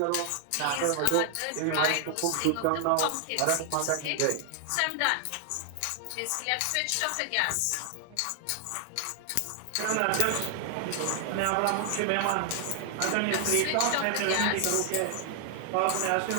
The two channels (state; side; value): different; both; correlation 0.00